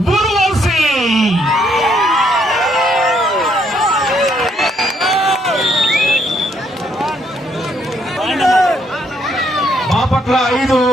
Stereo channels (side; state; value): both; normal; correlation 0.71